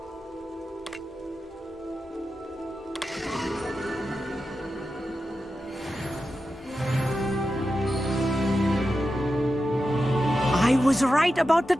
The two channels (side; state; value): both; normal; correlation 0.91